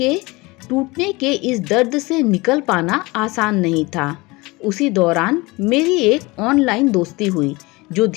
टूटने के इस दर्द से निकल पाना आसान नहीं था। उसी दौरान मेरी एक ऑनलाइन दोस्ती हुई जो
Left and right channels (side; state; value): right; quieter; 23.4 dB